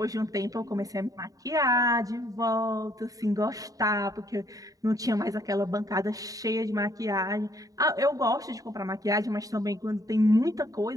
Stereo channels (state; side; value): late; left; 0.17 ms